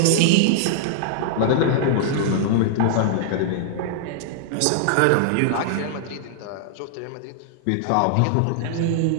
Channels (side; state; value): both; different; correlation -0.01